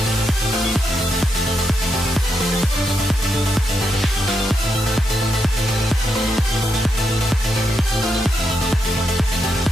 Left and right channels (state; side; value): normal; both; correlation 0.82